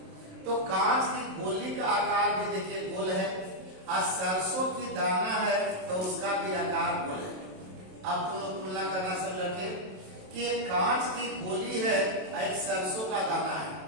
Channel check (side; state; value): left; late; 27 ms